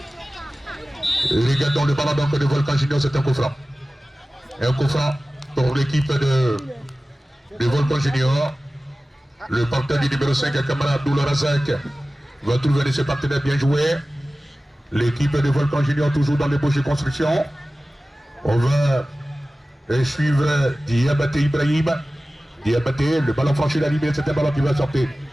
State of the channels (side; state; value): both; normal; correlation 0.96